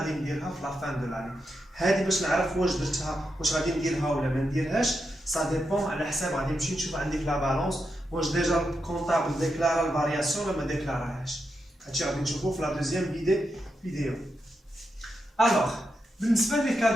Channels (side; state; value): both; normal; correlation 0.86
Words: نديرها في la fin de l'année. هذه باش نعرف واش درتها واش غادي نديرها ولا ما نديرهاش ça dépend على حساب غادي نمشي نشوف عندك لا بالانس واش ديجا الكونطابل ديكلارا الفارياسيون ولا ما ديكلاراهاش. هادشي غادي نشوفوه في لا دوزيام فيديو. الوغ بالنسبه لي